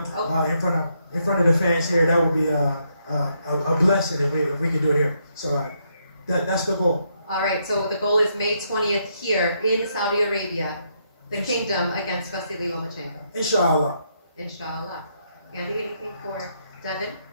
in front of the fans here. That would be a blessing if we could do it here. So that's the goal. All right, so the goal is May 20th here in Saudi Arabia, the kingdom against Vasily Lomachenko. Inshallah. Inshallah. Andy, anything for Devin?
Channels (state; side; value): inverted; both; correlation -0.76